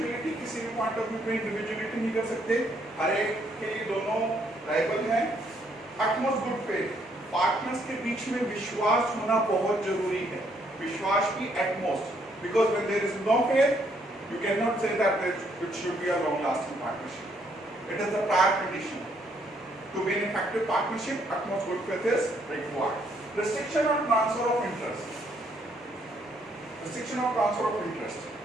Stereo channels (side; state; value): both; normal; correlation 0.70